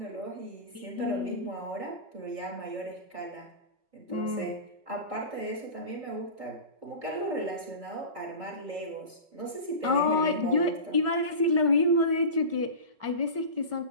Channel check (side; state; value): left; late; 5.3 ms